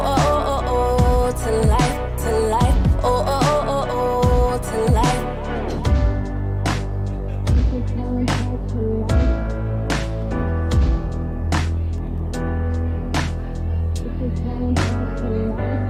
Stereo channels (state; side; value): identical; both; correlation 1.00